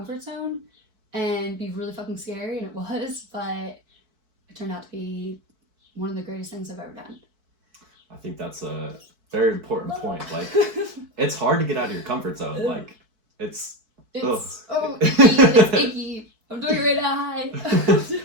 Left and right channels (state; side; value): late; left; 4.6 ms